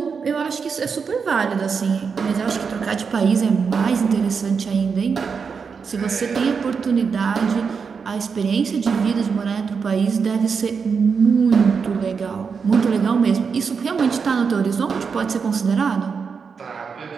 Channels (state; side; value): quieter; left; 5.8 dB